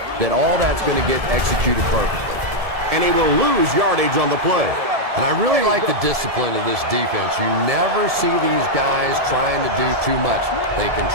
that all that's going to get executed perfectly. And he will lose yardage on the play. And I really like the discipline of this defense. You never see these guys trying to do too much. They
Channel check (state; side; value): late; left; 1.7 ms